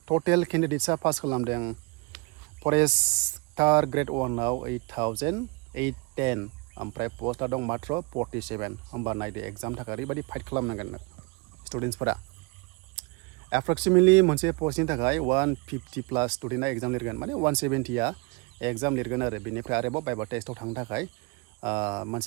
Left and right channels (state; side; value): quieter; left; 29.5 dB